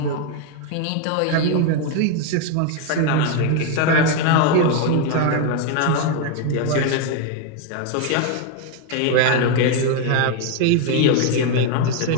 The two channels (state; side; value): different; both; correlation 0.01